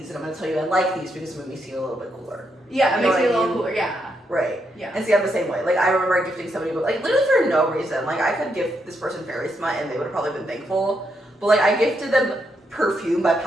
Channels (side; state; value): both; normal; correlation 0.79